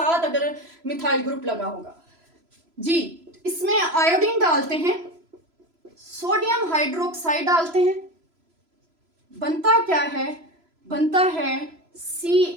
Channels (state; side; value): late; left; 3.0 ms